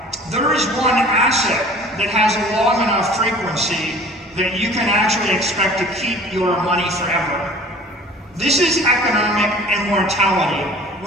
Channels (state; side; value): normal; both; correlation 0.46